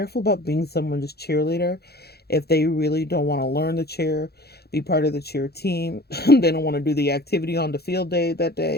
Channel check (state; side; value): late; right; 0.46 ms